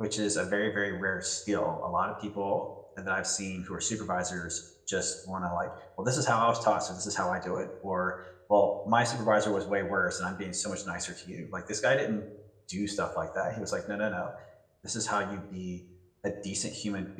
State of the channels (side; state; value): both; identical; correlation 1.00